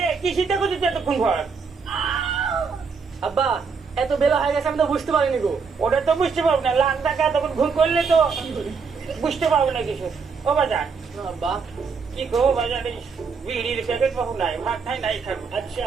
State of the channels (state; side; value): quieter; left; 5.3 dB